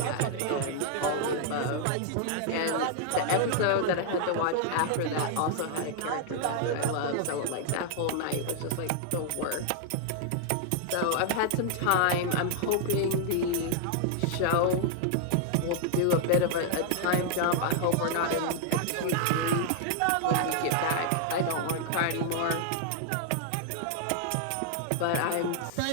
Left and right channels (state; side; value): different; both; correlation 0.00